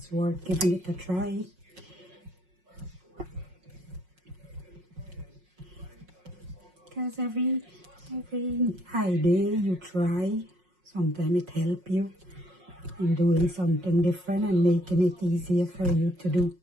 worth giving it a try. Because every idea you try, sometimes it helps you in doing something different and making it easier for you to do.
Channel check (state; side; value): late; left; 5.5 ms